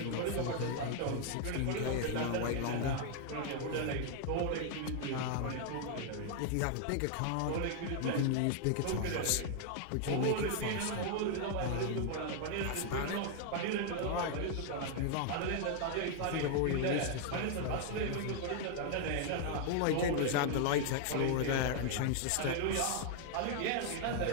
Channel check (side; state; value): both; different; correlation 0.00